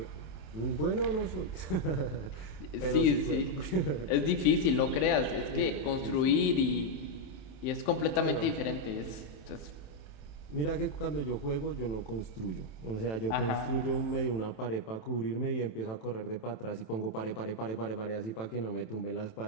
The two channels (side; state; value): right; late; 27 ms